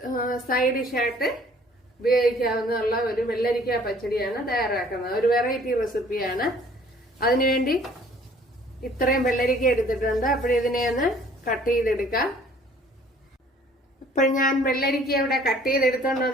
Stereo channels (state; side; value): normal; both; correlation 0.55